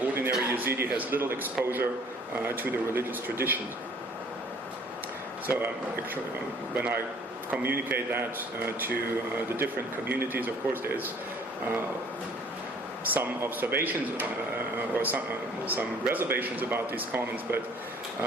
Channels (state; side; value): normal; both; correlation 0.55